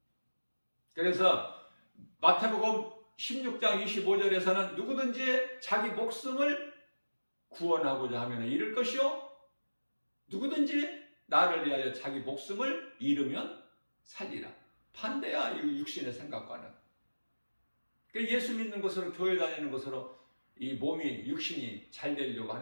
그래서 마태복음 16장 25절에서는 누구든지 자기 목숨을 구원하고자 하면 잃을 것이요 누구든지 나를 위하여 자기 목숨을 잃으면 살리라. 반대야 이 육신의 생각과는. 예수 믿는 것으로 교회 다니는 것으로 이 몸이 육신이 잘 되려고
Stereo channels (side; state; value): both; inverted; correlation -1.00